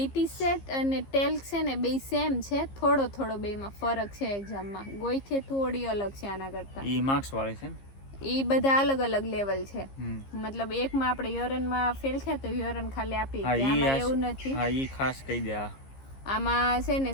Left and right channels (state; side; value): late; right; 15 ms